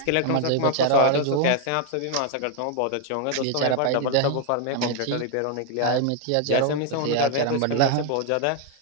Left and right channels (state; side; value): different; both; correlation 0.00